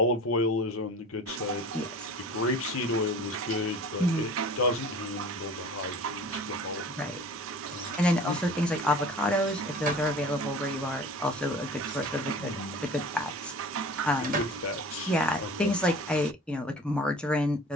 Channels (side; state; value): both; normal; correlation 0.42